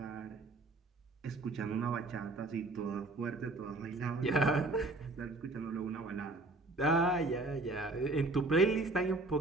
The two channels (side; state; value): left; quieter; 3.0 dB